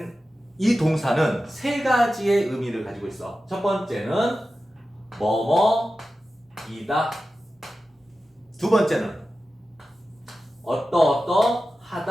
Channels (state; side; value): normal; both; correlation 0.93